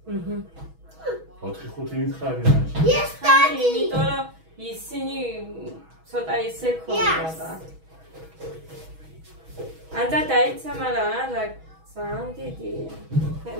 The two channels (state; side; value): late; left; 6.2 ms